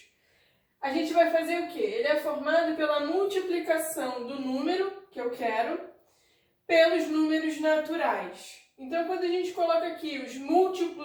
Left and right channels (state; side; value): identical; both; correlation 1.00